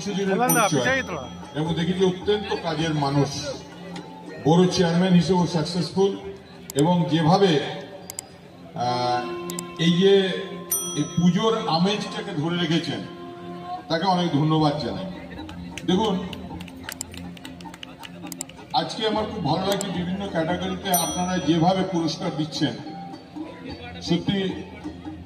দিনের পরিচয়, এবং দেখি যে অত্যন্ত কাজের মানুষ, বড় চেয়ারম্যান হিসেবে সাকসেসফুল, এবং যেভাবে এই যে এই পুজোর আমেজটাকে ধরে রেখেছেন তাকে অনেক ধন্যবাদ জানাই। দেখুন, আজকে আমার খুব ভালো লাগছে বিভিন্ন ক্যাটাগরিতে আপনারা যেভাবে পুরস্কার দিচ্ছেন। সত্যি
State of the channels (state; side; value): identical; both; correlation 1.00